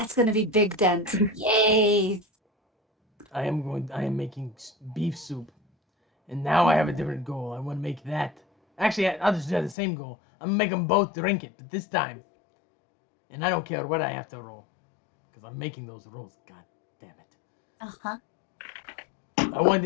gonna be big dent. Yay! I am making beef soup, and now I have a different goal. I want to make that. Actually, I'll just have the same goal. I'm gonna make them both drink it, but this time, and I don't care what I have to roll, because I'm making those rolls. God damn it. Uh-huh. I want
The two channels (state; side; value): drops out; right; at 9.8 s